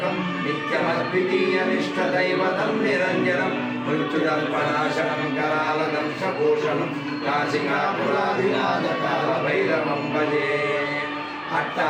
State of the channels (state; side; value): identical; both; correlation 1.00